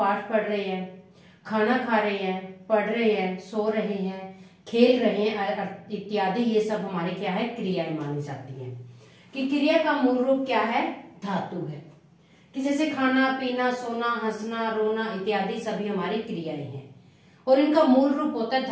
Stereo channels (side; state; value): both; identical; correlation 1.00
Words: पढ़ रहे हैं, खाना खा रहे हैं, पढ़ रहे हैं, सो रहे हैं, खेल रहे हैं इत्यादि, ये सब हमारे क्या है? क्रियाएं मानी जाती हैं। कि क्रिया का मूल रूप क्या है? धातु है। कि जैसे खाना पीना, सोना, हंसना, रोना इत्यादि सभी हमारी क्रियाएं हैं और इनका मूल रूप होता है